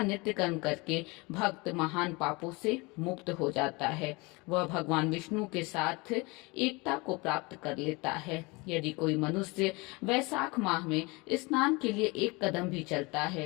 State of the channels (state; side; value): quieter; right; 25.8 dB